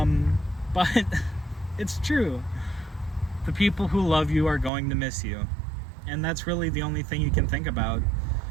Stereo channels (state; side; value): drops out; left; at 4.7 s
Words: it's true. The people who love you are going to miss you. And that's really the only thing you can think about